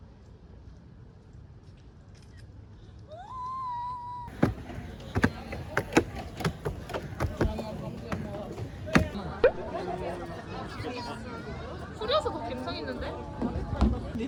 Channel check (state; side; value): identical; both; correlation 1.00